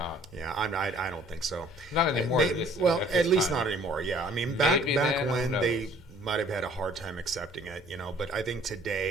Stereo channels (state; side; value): normal; both; correlation 0.55